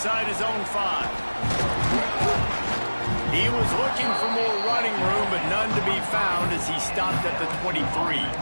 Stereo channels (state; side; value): inverted; both; correlation -1.00